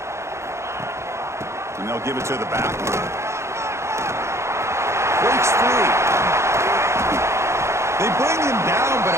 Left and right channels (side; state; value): left; late; 0.13 ms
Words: And they'll give it to the back. Breaks free. They bring him down, but